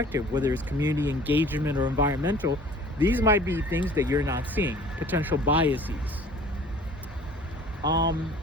whether it's community engagement or environmental. These might be things that you're not seeing, potential biases.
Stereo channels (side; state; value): both; normal; correlation 0.48